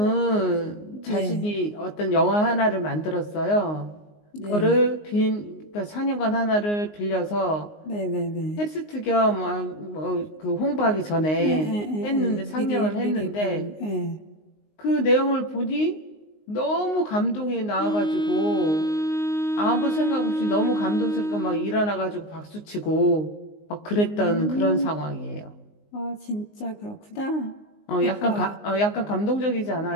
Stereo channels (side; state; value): right; late; 19 ms